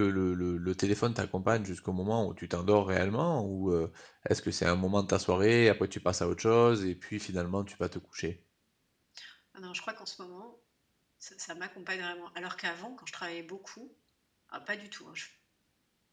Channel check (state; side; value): identical; both; correlation 1.00